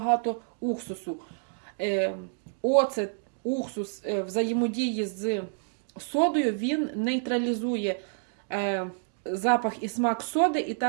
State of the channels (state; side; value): silent; left; digital silence